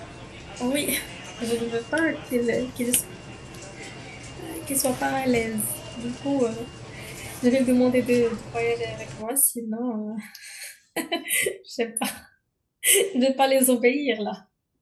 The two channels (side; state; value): both; identical; correlation 1.00